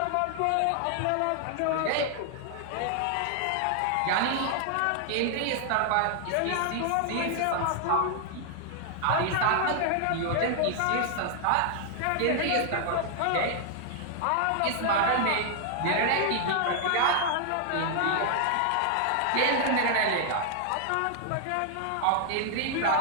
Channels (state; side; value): different; both; correlation 0.00